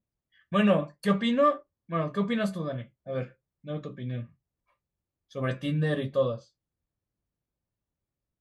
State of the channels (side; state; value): both; identical; correlation 1.00